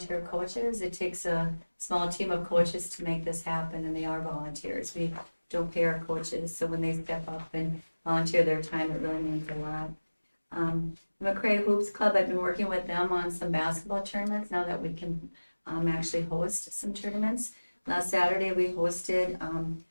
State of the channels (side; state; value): both; inverted; correlation -1.00